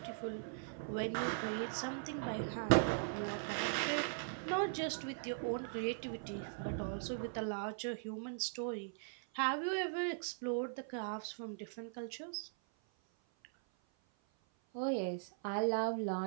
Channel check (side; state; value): left; silent; 51 dB below the other